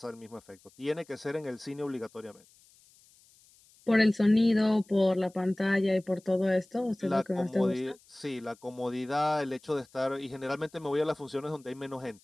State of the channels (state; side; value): noise; left; hiss, 29 dB below the sound